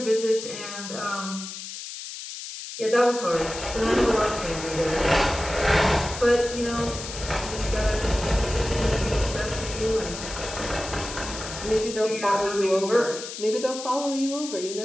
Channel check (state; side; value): noise; left; hiss, 9 dB below the sound